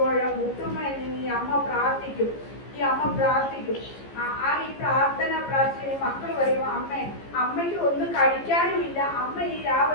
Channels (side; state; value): right; late; 15 ms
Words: മുട്ടുമ്മയിൽ നിന്ന് ഈ അമ്മ പ്രാർത്ഥിക്കും. ഈ പ്രാർത്ഥിച്ച് മക്കൾ പറയും, അമ്മയ്ക്ക് ഒന്നും കഴിക്കാനുമില്ല, അമ്മ ഈ